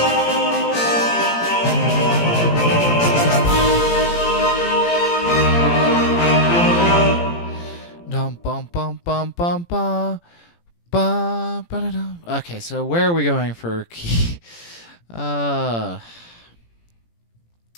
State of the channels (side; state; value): right; late; 17 ms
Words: Okay, so where are we going for key? So